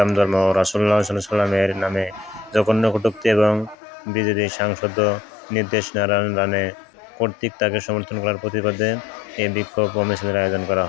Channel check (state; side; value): drops out; right; at 3.8 s